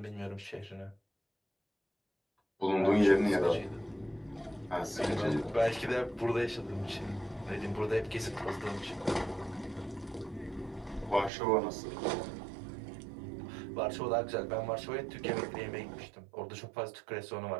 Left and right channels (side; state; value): left; drops out; at 11.3 s